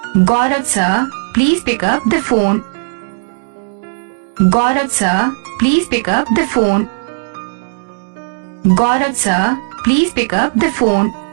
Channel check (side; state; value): left; silent; 70 dB below the other